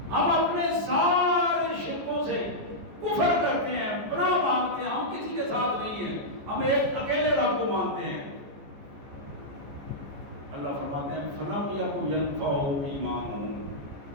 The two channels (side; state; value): left; late; 14 ms